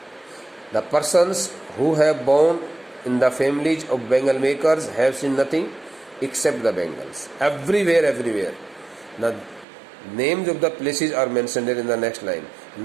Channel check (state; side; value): drops out; left; at 9.7 s